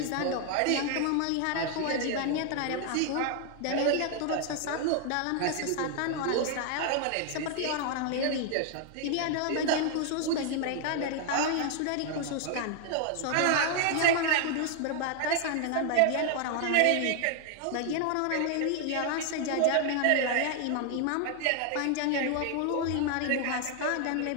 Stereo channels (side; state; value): both; different; correlation 0.00